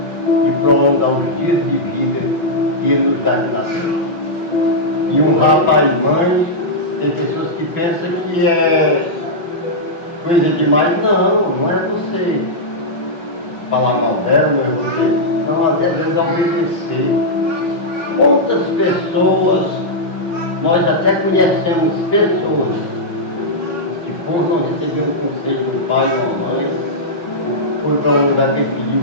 de prolongar os dias de vida que ele nos dá de nascer. E honrar pai e mãe, tem pessoas que pensam que é coisa demais. Não, não é você falar mal dela, não é você. Não, às vezes é obedecer. Quantas pessoas, nós até conhecemos pessoas que por não receber um conselho do pai ou da mãe, foi para um lugar que ele pediu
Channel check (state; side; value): late; right; 5.7 ms